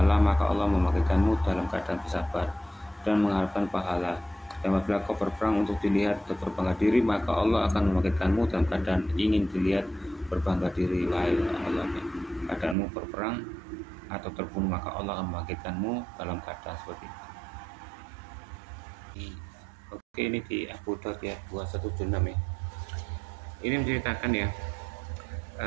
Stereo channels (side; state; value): left; drops out; at 12.8 s